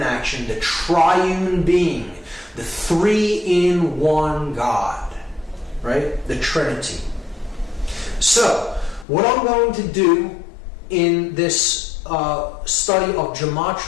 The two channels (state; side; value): drops out; right; at 9.1 s